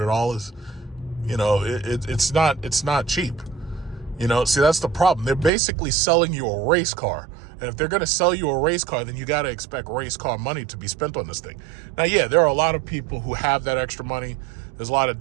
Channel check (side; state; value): left; drops out; at 5.5 s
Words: you know, it's not cheap. You know, see, that's the problem. They're basically selling you a race car. And if they're going to sell you a race car, then you got to expect race car money to be spent on this thing. Now, yeah, there are a lot of people who have that extra money. There's a lot of